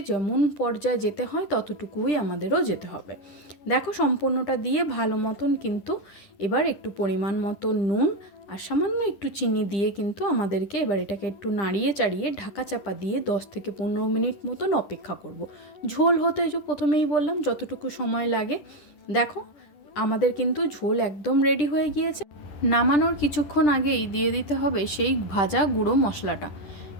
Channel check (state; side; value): late; right; 10 ms